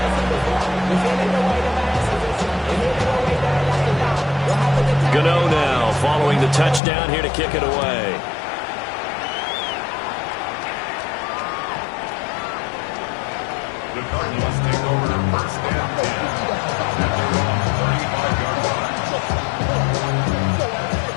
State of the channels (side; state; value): right; drops out; at 6.8 s